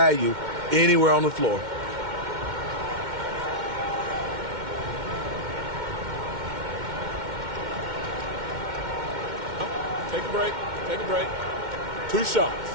anywhere on the floor. Take a break. Take a break. 2 shots.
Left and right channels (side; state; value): left; late; 2.1 ms